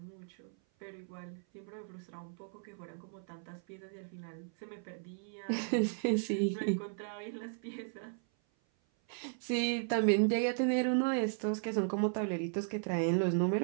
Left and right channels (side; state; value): left; silent; 54 dB below the other